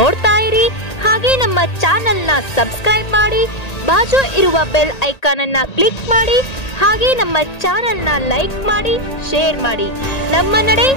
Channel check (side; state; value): right; late; 1.8 ms